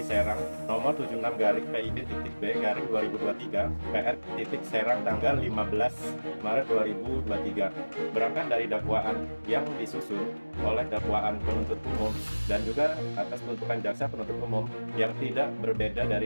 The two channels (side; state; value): both; inverted; correlation -1.00